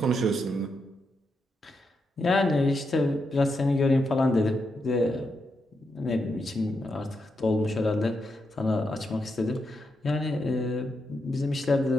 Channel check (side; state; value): both; normal; correlation 0.84